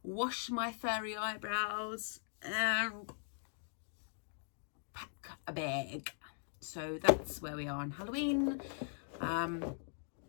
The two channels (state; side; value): silent; right; digital silence